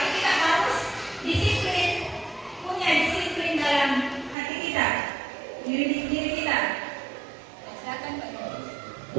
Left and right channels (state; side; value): drops out; left; at 4.4 s